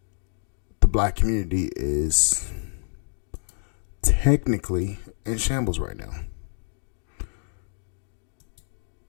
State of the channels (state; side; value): silent; right; digital silence